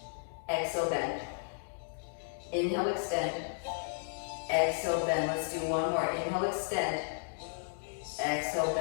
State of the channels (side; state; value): right; silent; digital silence